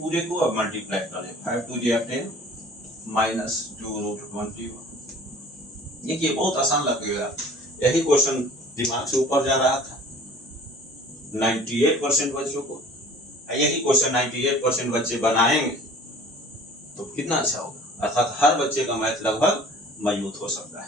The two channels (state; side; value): normal; both; correlation 0.47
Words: को, अब मल्टीप्लाई कर दीजिए। 5 2 10 माइनस 2 रूट 21। देखिए बहुत आसान लगेगा, यही क्वेश्चन दिमाग से ऊपर जा रहा था 98% बच्चों को। यही क्वेश्चन 98% बच्चे बनाएंगे तो कितना अच्छा होगा, अर्थात हर बच्चे का मैथ लगभग मजबूत हो सकता है,